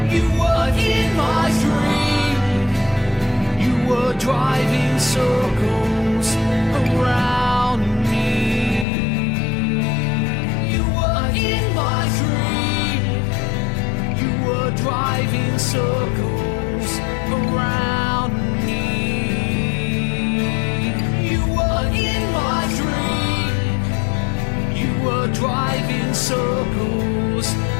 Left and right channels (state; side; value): drops out; right; at 8.8 s